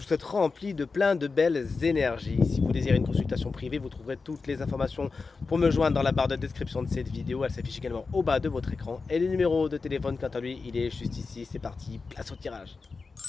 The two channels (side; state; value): right; quieter; 4.4 dB